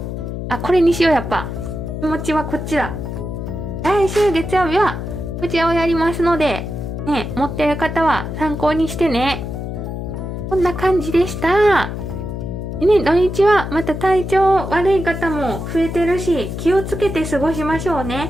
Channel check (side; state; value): left; noise; hum, 6 dB below the sound